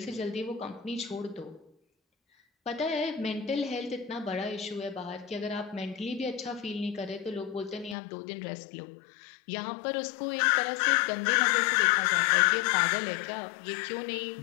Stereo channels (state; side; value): drops out; right; at 8.0 s